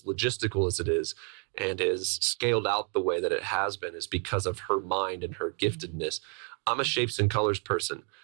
logistical as it is and is scaled out the way that it has been is because of her mind and her giftedness. I'm a shapes and colors person.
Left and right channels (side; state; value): left; quieter; 34.2 dB